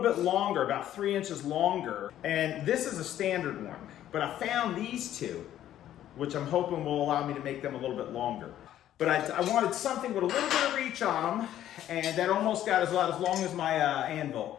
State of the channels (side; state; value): right; quieter; 12.0 dB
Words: bit longer, about 3 inches longer. And this is a standard one, but I found these two, which I'm hoping will allow me to make them a little bit longer. But I wanted something with a little bit of reach on them, and that almost got as long as my anvil